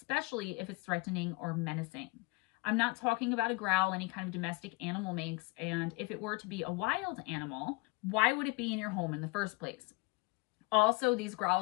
if it's threatening or menacing. I'm not talking about a growl any kind of domestic animal makes, and if it were to be a wild animal, why would it be in your home in the first place? Also, these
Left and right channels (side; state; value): right; quieter; 24.9 dB